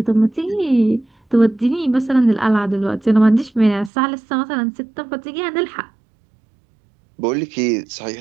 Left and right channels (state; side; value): drops out; left; at 3.9 s